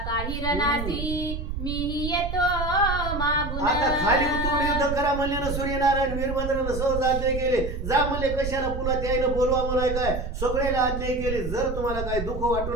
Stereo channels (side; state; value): right; noise; rumble, 5 dB below the sound